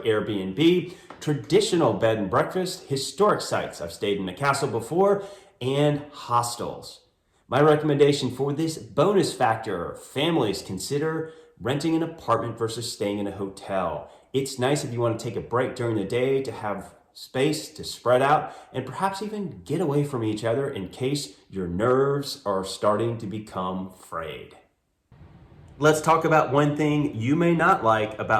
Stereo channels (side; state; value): both; identical; correlation 1.00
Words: Airbnb, traditional bed and breakfast, historic sites. I've stayed in a castle before, and hostels. My recommendation for this bonus factor, families, consider renting an apartment versus staying in a hotel. It's nice if you want to take a break during the day to have space to spread out and perhaps even get away from each other in case your nerves are starting to become frayed. Let's talk about one thing you may not like